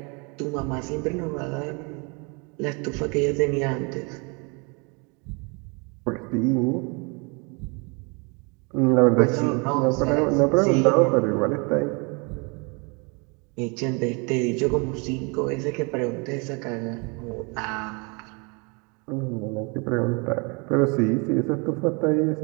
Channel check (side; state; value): left; quieter; 31.7 dB